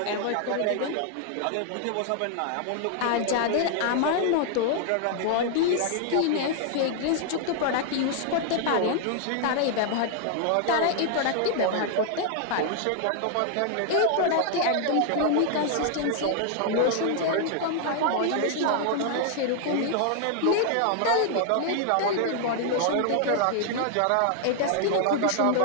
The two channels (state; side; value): different; both; correlation 0.00